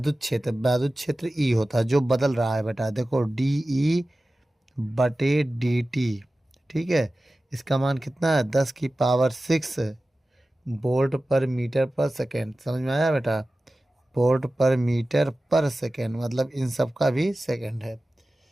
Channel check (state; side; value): normal; both; correlation 0.96